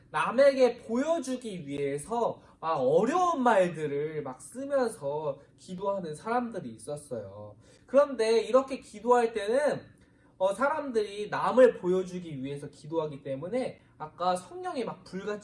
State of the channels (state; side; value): identical; both; correlation 1.00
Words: 남에게 보여주기 위해서 어려운 말들을 막 쓰면서 기도하는 사람들이 있었어요. 그런데 이렇게 기도할 때는 사람들이 남을 보여주기 위해서 기도하기 때문에 아까 성령이 막